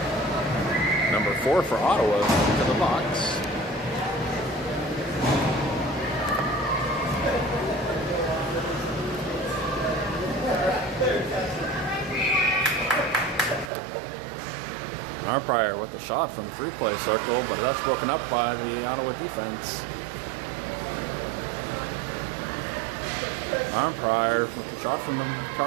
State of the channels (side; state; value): left; drops out; at 13.7 s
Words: Number 4 for Ottawa into the box. Arnprior with the shot from the free-play circle, but that's broken up by the Ottawa defense. Arnprior with the shot from the